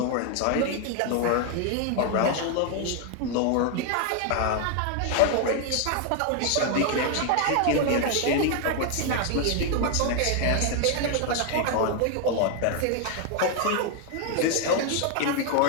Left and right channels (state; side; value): different; both; correlation 0.00